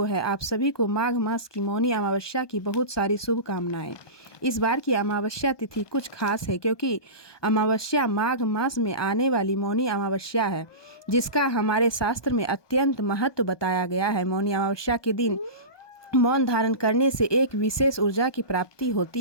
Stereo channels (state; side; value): late; right; 1.2 ms